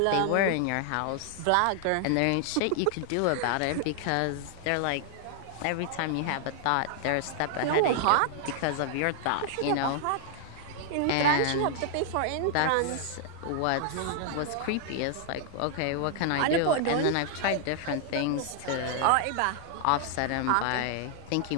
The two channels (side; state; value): both; different; correlation 0.00